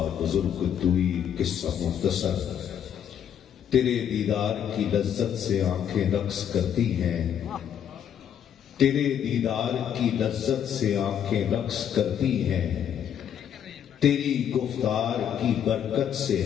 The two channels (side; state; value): right; quieter; 9.1 dB